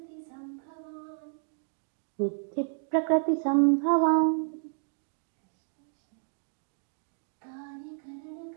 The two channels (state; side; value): silent; left; 57 dB below the other